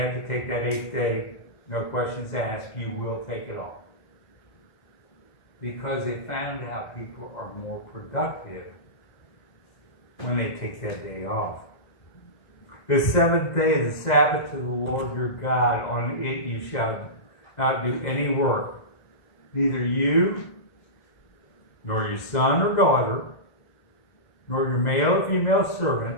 to take that 8th day, no questions asked, you will take it off. Because they found out people are more productive when they take that day off. The 7th day is the Sabbath to the Lord your God. On it you shall not do any work, neither you, nor your son or daughter, nor your male or female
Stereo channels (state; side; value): late; right; 2.0 ms